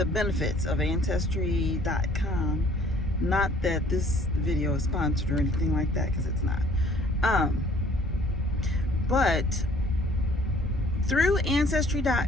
benefits of Ancestry.com. Not that this video is sponsored or anything like that, because it's not. But through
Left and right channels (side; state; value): both; normal; correlation 0.57